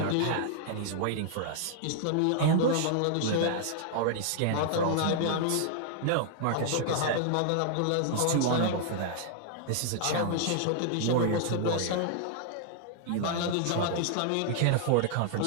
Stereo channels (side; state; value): both; different; correlation -0.01